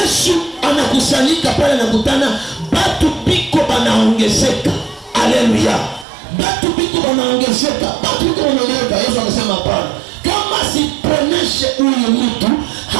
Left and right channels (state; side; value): drops out; left; at 6.1 s